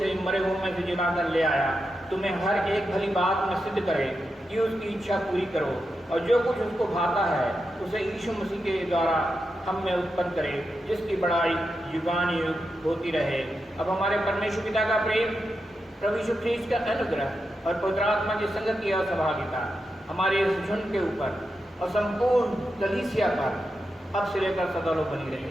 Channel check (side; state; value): both; normal; correlation 0.87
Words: मरे हुए में से जिलाकर ले आया, तुम्हें हर एक भली बात में सिद्ध करे कि उसकी इच्छा पूरी करो और जो कुछ उसको भाता है उसे यीशु मसीह के द्वारा हम में उत्पन्न करे, जिसकी बड़ाई युगानुयुग होती रहे। अब हमारे परमेश्वर पिता का प्रेम, प्रभु यीशु ख्रीस्त का अनुग्रह और पवित्र आत्मा की संगति और सहभागिता हमारे इस झुंड के ऊपर और संपूर्ण कलीसिया पर अब से लेकर सदा बनी